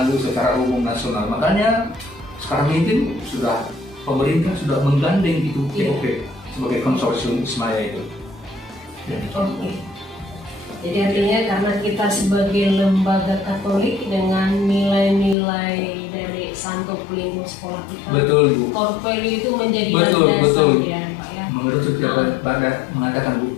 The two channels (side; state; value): right; drops out; at 15.4 s